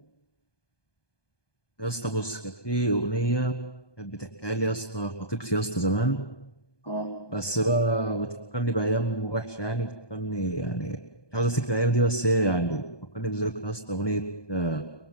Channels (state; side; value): late; right; 1.2 ms